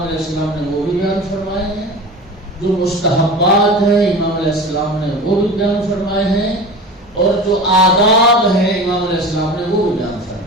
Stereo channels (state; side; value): normal; both; correlation 0.33